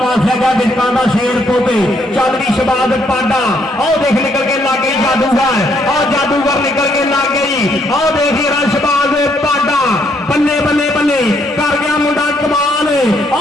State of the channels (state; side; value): normal; both; correlation 0.71